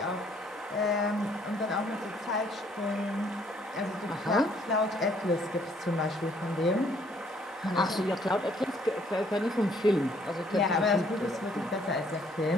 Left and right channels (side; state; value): both; normal; correlation 0.64